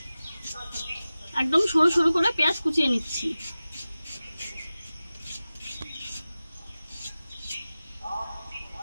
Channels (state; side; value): inverted; both; correlation -0.96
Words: একদম সরু সরু করে পেঁয়াজ কুচিয়ে নিচ্ছি।